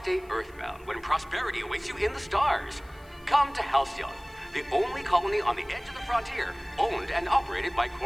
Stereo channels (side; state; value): left; noise; hiss, 29 dB below the sound